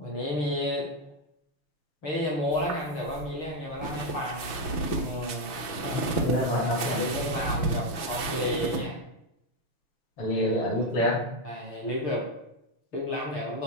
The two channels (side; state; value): right; late; 6.1 ms